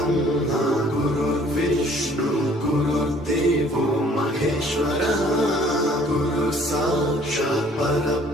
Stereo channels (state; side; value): normal; both; correlation 0.56